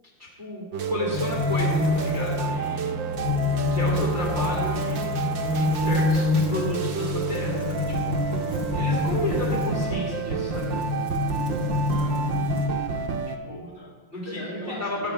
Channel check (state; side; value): late; left; 5.7 ms